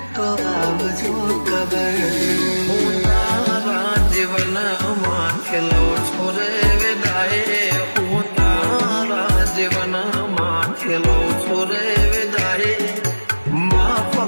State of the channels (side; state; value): both; inverted; correlation -1.00